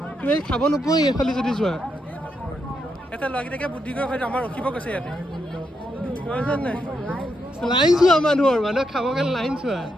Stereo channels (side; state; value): both; normal; correlation 0.81